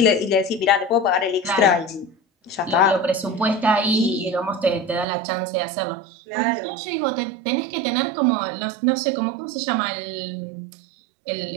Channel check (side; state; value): left; drops out; at 5.1 s